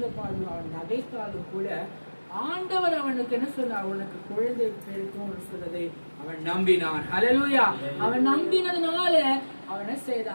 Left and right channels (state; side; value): inverted; both; correlation -1.00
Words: நகைத்தாலும் கூட ஆண்டவர் அவனுக்கு என்ன சொன்னார்? அவனுக்கு குழந்தை பிறக்கும் சொன்னதை அவன் நம்பினான். ஹல்லேலூயா. அவன் நம்பினதுனால அவன் என்ன